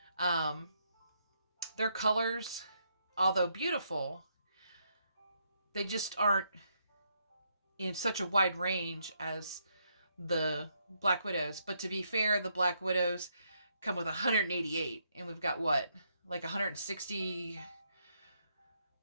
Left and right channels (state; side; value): inverted; both; correlation -0.76